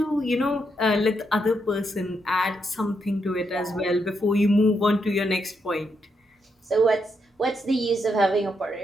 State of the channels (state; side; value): normal; both; correlation 0.80